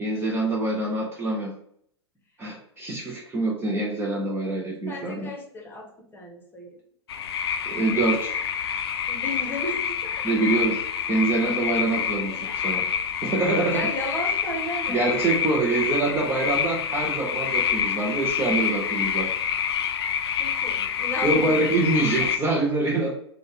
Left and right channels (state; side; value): normal; both; correlation 0.12